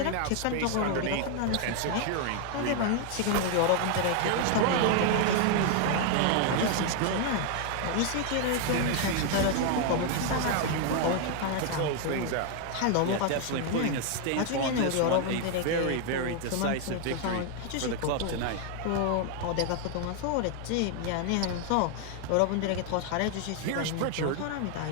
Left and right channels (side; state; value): both; different; correlation 0.00